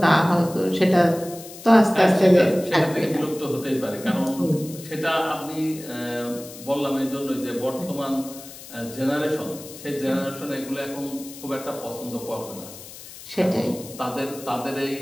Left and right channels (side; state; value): left; noise; hiss, 16 dB below the sound